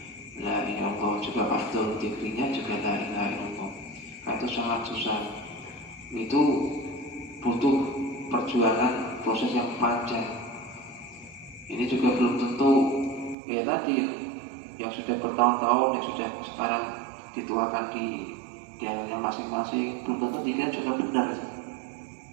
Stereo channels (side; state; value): left; drops out; at 13.4 s